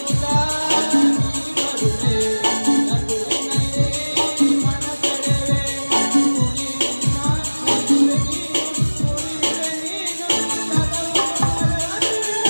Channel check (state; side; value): inverted; both; correlation -1.00